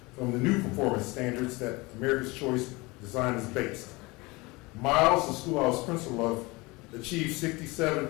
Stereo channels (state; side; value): quieter; right; 24.1 dB